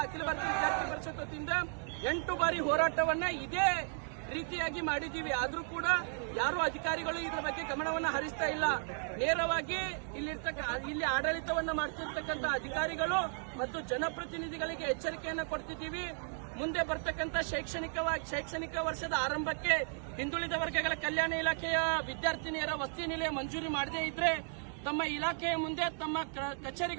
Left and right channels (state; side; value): silent; left; 54 dB below the other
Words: ಪರಿಷತ್ ವತಿಯಿಂದ 8 ಬಾರಿ ಹೋರಾಟವನ್ನ ಇದೇ ರೀತಿಯಾಗಿ ಮಾಡಿದ್ದೀವಿ. ಆದ್ರೂ ಕೂಡ ಯಾರು ಅಧಿಕಾರಿಗಳು ಇದರ ಬಗ್ಗೆ ಗಮನವನ್ನ ಹರಿಸ್ತಾ ಇಲ್ಲ. ನೇರವಾಗಿ ಇಲ್ಲಿ ಆಡಳಿತವನ್ನ ಮಾಡ್ತಿರ್ತಕ್ಕಂಥ ಅಧಿಕಾರಿಗಳು ಮತ್ತು ಜನಪ್ರತಿನಿಧಿಗಳಿಗೆ ಎಚ್ಚರಿಕೆಯನ್ನ ಕೊಡ್ತಿದ್ದೀವಿ. ಮುಂದೆ ಬರ್ತಕ್ಕಂಥ ಶೈಕ್ಷಣಿಕ ವರ್ಷದ ಆರಂಭಕ್ಕೆ ಹಿಂದುಳಿದ ವರ್ಗಗಳ ಕಲ್ಯಾಣ ಇಲಾಖೆಯ ವಿದ್ಯಾರ್ಥಿನಿಯರ ವಸತಿ ನಿಲಯ ಮಂಜೂರಿ ಮಾಡದೇ ಇದ್ರೆ ತಮ್ಮ ಇಲಾಖೆಯ ಮುಂದೆ, ತಮ್ಮ